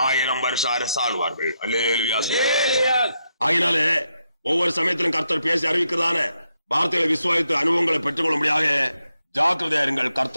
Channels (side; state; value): both; inverted; correlation -0.82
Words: வருஷம் அரசாழ்வார்கள். அல்லேலூயா. ஆகினாலே ஒவ்வொரு சமயத்திலும் கர்த்தர் பேசி அறிவிக்கிறதான வார்த்தைகளை விசுவாசித்து அனுபவங்களை பெற்றுக்கொள்ள முடியாத ஜாக்கிரதையா இருங்கள்.